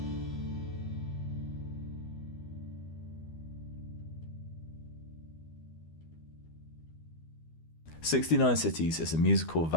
"69 Cities" is a musical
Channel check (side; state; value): right; late; 12 ms